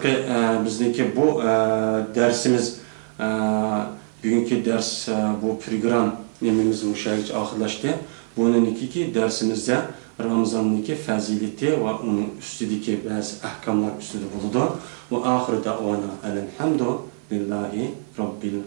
bizniki bu dersimiz, bugungi ders bu program nemimiz müşahit ahırlaştı. Bunun iki dersimizde Ramazan'daki fazileti ve onun üstündeki bazı ahkamlar üstünde bulundu. Ve ahir davana elhamdülillahi rabbil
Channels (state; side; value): silent; left; 55 dB below the other